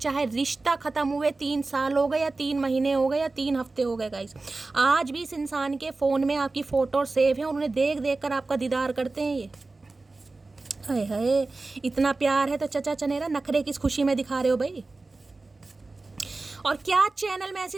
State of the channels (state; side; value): quieter; left; 3.5 dB